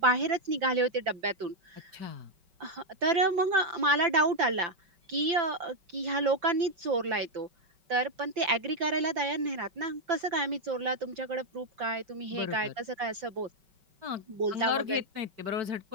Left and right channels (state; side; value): late; left; 5.2 ms